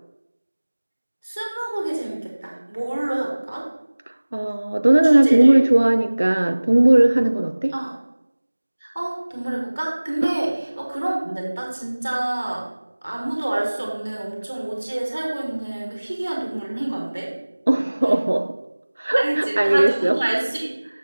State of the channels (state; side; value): inverted; both; correlation -1.00